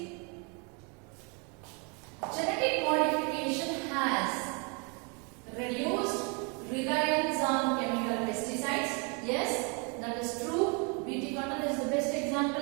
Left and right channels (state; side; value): quieter; left; 34.3 dB